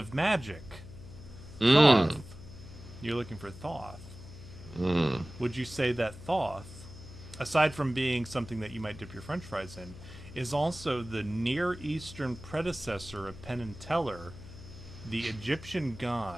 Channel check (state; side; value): noise; left; hum, 15 dB below the sound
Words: magic, Thoth. You're looking for Thoth. Would you say that Thoth, aside from being something that you might dip your French fries in, is also the Near Eastern predecessor of Penn and Teller, the Egyptian